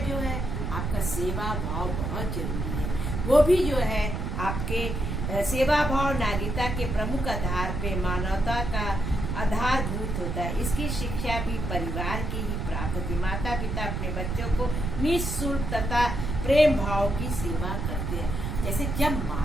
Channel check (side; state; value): right; noise; rumble, 3 dB below the sound